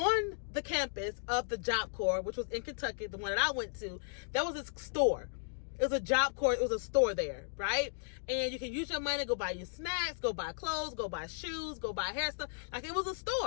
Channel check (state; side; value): silent; right; digital silence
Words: the campus of the Job Corps, which was in Kentucky, the one that I went to, there was this store. It was a Job Corps. It was a store there, right? And you can use your money, go buy your snacks, go buy clothes, go buy shoes, go buy hair stuff. Like, it was a